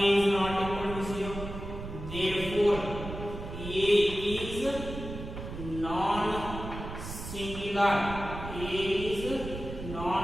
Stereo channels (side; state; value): right; noise; rumble, 9 dB below the sound